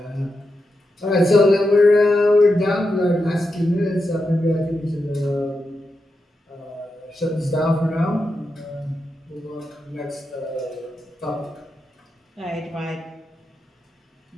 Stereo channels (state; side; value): normal; both; correlation 0.87